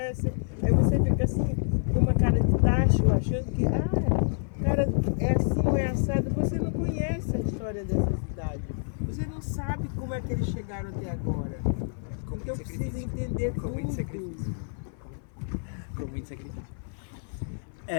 Aí você fica assim, com uma cara de tacho, achando que, cara, é assim ou é assado. Você não conhece a história dessa cidade. Você não sabe como é que eles chegaram até agora. Então precisa entender Com muito tudo. sacrifício. Com muito sacrifício.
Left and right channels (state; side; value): silent; right; 55 dB below the other